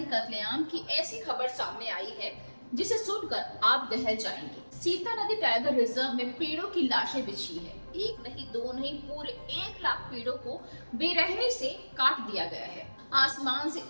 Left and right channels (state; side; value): inverted; both; correlation -1.00